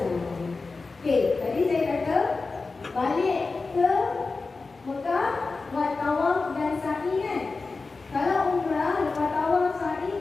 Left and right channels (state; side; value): quieter; right; 3.9 dB